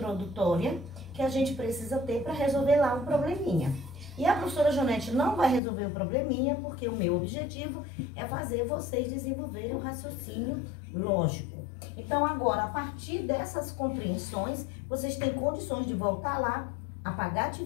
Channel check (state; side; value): drops out; right; at 5.6 s